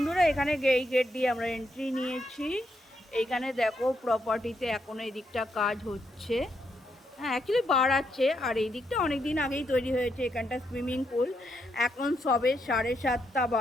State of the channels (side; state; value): both; normal; correlation 0.79